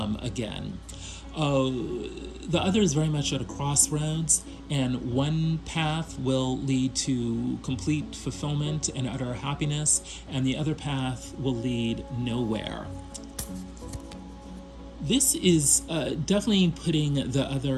again. The other is very much at a crossroads, and one path will lead to complete fulfillment and utter happiness, and the other path will lead nowhere. This is definitely putting the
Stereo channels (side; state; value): both; identical; correlation 1.00